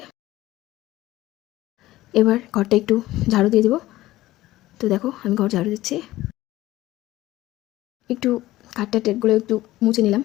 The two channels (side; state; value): right; quieter; 16.4 dB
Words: এবার ঘরটা একটু ঝাড়ু দিয়ে দিব। তো দেখো আমি ঘর ঝাড়ু দিচ্ছি, একটু কাঠটা টেটগুলো একটু মুছে নিলাম,